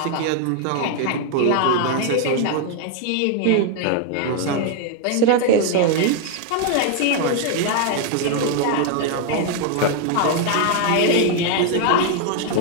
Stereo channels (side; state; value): both; different; correlation 0.00